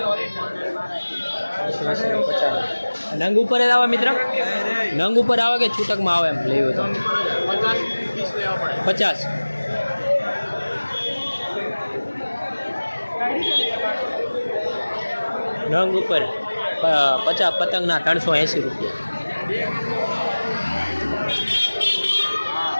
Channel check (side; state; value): both; inverted; correlation -1.00